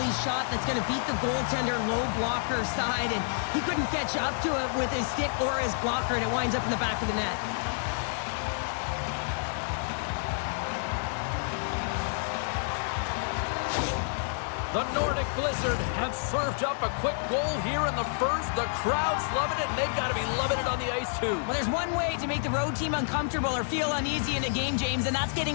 shot that's going to beat the goaltender low blocker side, and he couldn't catch up to it with his stick or his blocker, and it winds up in the back of the net. The Nordic Blizzard have served up a quick goal here in the first. The crowd's loving it, and they've got to be loving it on the ice, too. Well, there's one way to make the road team uncomfortable or feel uneasy in a game, James, and that's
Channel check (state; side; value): silent; right; 59 dB below the other